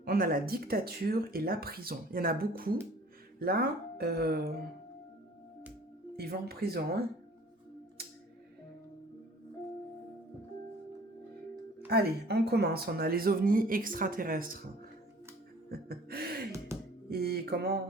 On a la dictature et la prison. Il y en a beaucoup. Là, ils vont en prison. Hein. Allez, on commence. On a les ovnis extraterrestres. Et comment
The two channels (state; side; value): normal; both; correlation 0.50